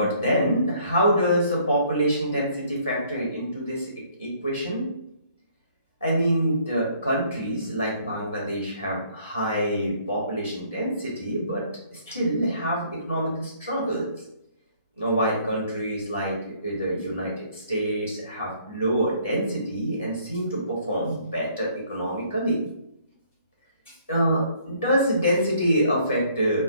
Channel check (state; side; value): inverted; both; correlation -0.62